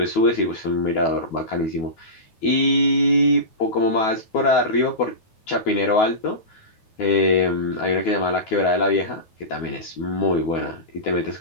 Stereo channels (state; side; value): late; right; 9.3 ms